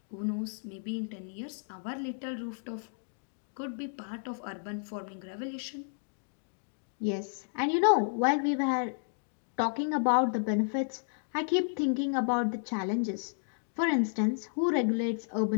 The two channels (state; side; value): silent; right; digital silence